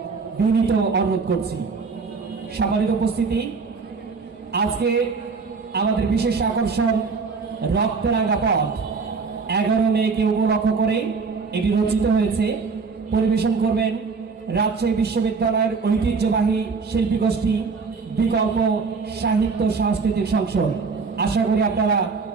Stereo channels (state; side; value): quieter; left; 4.8 dB